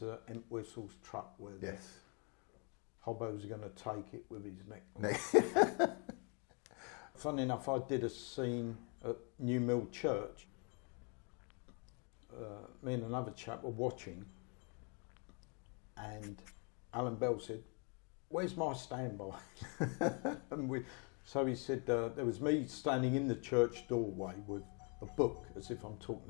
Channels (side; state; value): right; quieter; 35.7 dB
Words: Entwistle's truck where the hobbo's going to take it with his neck. Funny enough, I did a scene at New Mill Church. Me and another chap were watching, and Alan Bell said, "Where's my standby?" And so he said, there was me standing in the church doorway with a book, as if I'm talking